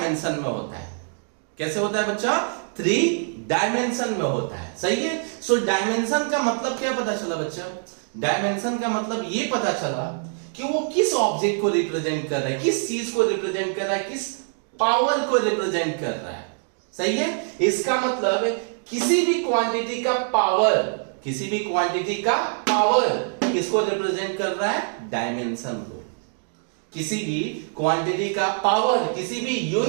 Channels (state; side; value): silent; left; 62 dB below the other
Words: में होता है। कैसे होता है बच्चा? 3 डायमेंशन में होता है। सही है। सो डायमेंशन का मतलब क्या पता चला बच्चा? डायमेंशन का मतलब ये पता चला कि वो किस ऑब्जेक्ट को रिप्रेजेंट कर रहा है, किस चीज को रिप्रेजेंट कर रहा है, किस पावर को रिप्रेजेंट कर रहा है। सही है। इसका मतलब किसी भी क्वांटिटी का पावर किसको रिप्रेजेंट कर रहा है? डायमेंशन को। किसी भी क्वांटिटी का पावर, किसी भी